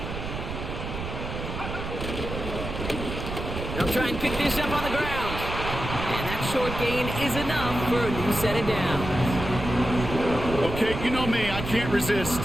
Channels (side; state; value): right; noise; rumble, 6 dB below the sound